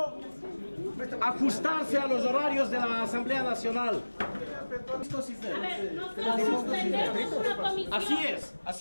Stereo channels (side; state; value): both; inverted; correlation -1.00